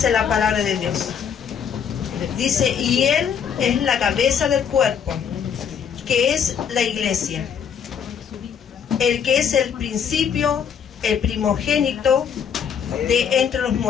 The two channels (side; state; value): right; quieter; 7.5 dB